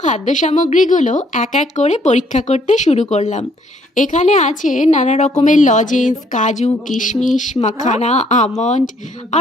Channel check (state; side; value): normal; both; correlation 0.66